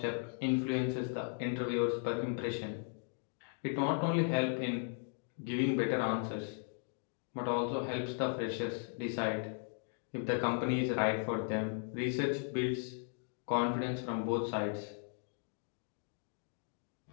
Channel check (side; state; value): right; silent; 53 dB below the other